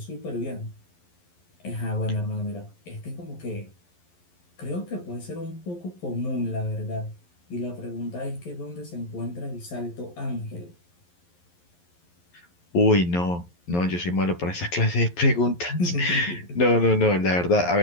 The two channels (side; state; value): right; late; 11 ms